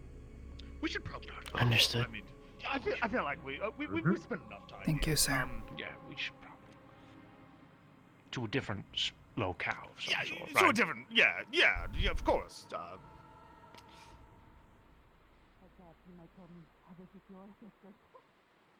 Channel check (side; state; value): both; identical; correlation 1.00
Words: We should probably. Understood. I mean, I feel like we spent enough time. Thank you, sir. Yeah, we should probably to a different locale. Of some sort, to a right? different. Yeah, of course.